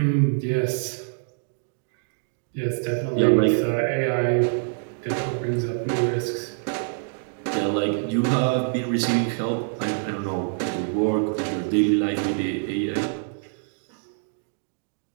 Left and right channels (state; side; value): silent; left; digital silence